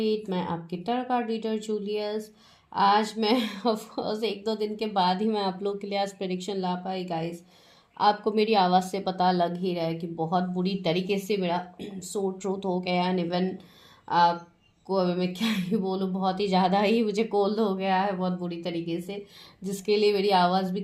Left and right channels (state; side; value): identical; both; correlation 1.00